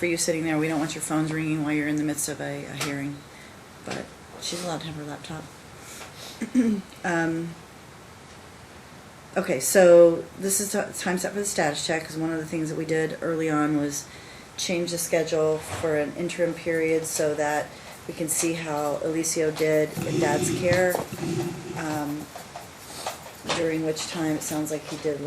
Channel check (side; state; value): both; identical; correlation 1.00